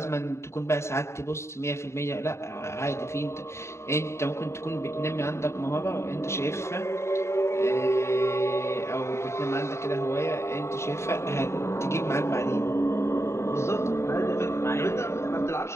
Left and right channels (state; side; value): late; right; 0.13 ms